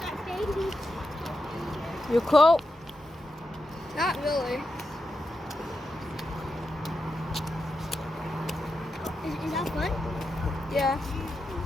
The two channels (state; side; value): normal; both; correlation 0.87